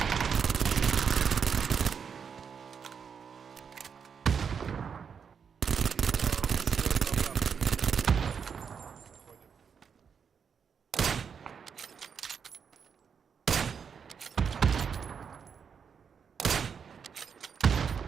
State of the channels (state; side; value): quieter; left; 6.7 dB